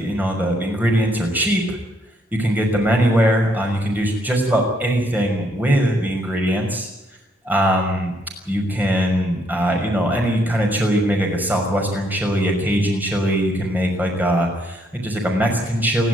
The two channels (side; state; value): both; normal; correlation 0.71